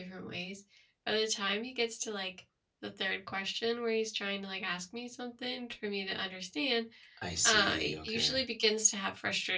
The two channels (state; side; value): identical; both; correlation 1.00